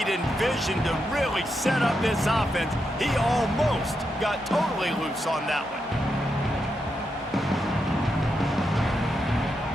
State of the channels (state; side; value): normal; both; correlation 0.84